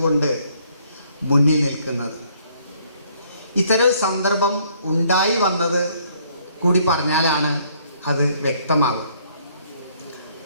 മുന്നിൽ നിൽക്കുന്നത്. ഇത്തരം സന്ദർഭം ഉണ്ടായി വന്നത് കൂടി പറഞ്ഞാലാണ് അത് വ്യക്തമാവുക.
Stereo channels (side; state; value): both; inverted; correlation -0.65